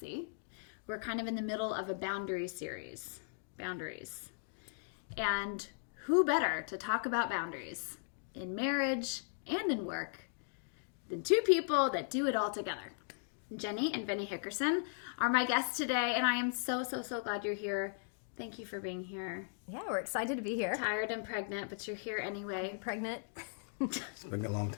We're kind of in the middle of a boundaries series. Boundaries. And who better to talk about boundaries in marriage and in work than two people that do it all together. Jenny and Vinny Hickerson are my guests today, and I am so glad you're here. Thank you for being here. Yeah, we're excited to be here. Tired and pregnant, but you're here anyway. I'm pregnant. It's been a long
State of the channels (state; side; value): silent; right; digital silence